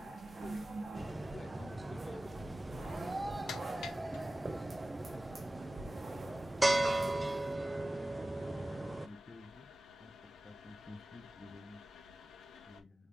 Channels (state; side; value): normal; both; correlation 0.97